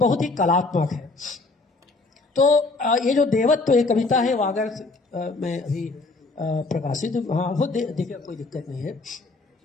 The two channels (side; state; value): right; quieter; 3.5 dB